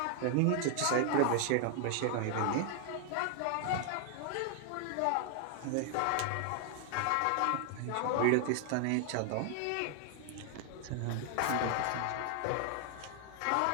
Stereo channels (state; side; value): different; both; correlation 0.00